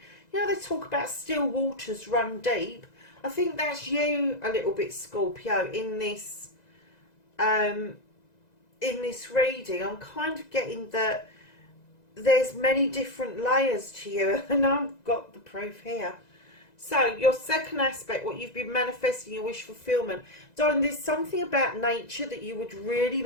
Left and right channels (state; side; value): late; right; 2.0 ms